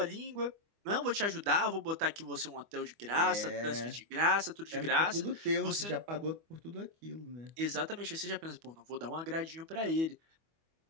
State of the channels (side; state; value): left; late; 25 ms